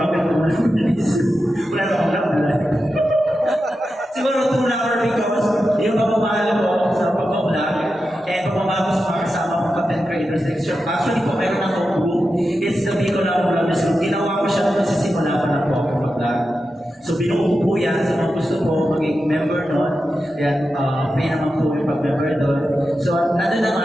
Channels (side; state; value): both; normal; correlation 0.90